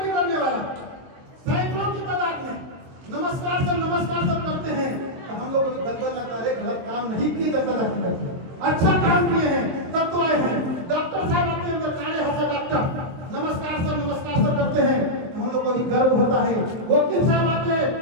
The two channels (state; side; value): late; left; 23 ms